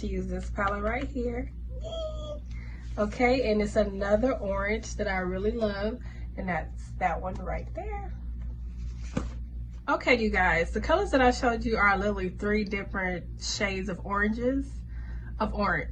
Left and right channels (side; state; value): both; identical; correlation 1.00